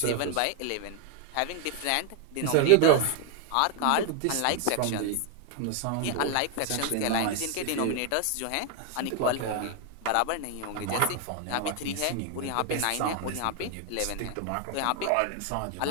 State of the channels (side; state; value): both; different; correlation 0.00